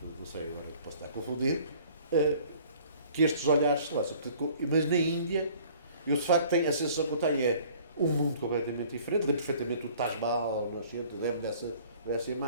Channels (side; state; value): both; inverted; correlation -0.52